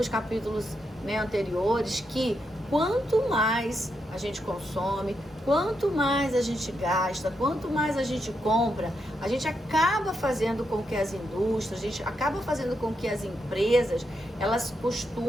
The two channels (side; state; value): both; normal; correlation 0.83